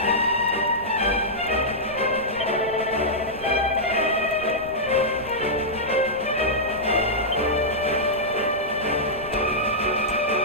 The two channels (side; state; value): right; noise; rumble, 17 dB below the sound